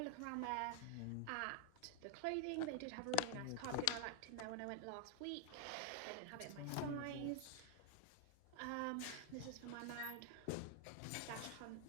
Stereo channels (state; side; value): different; both; correlation 0.01